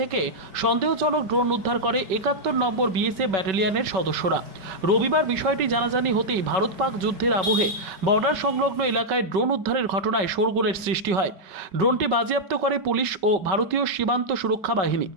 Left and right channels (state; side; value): late; left; 5.3 ms